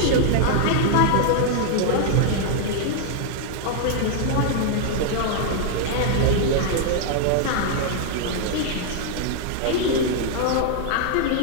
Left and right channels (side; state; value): both; different; correlation -0.01